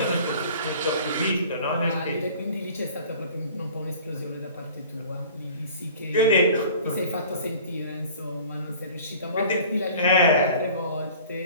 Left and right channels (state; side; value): inverted; both; correlation -0.46